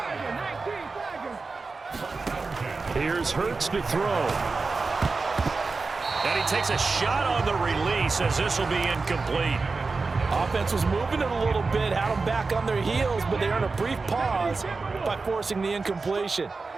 Here's Hurts to throw. And he takes a shot on the release as this will be incomplete. Offense was moving it a little bit, had them back on their heels, but they earned a brief pause by forcing the incompletion.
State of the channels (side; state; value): left; quieter; 4.1 dB